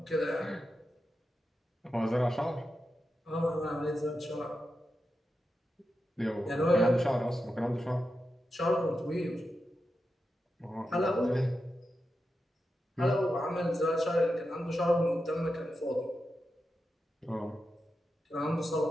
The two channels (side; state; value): both; normal; correlation 0.89